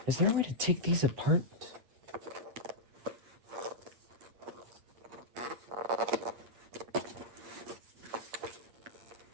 Is there a way to take these apart?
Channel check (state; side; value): late; left; 8.3 ms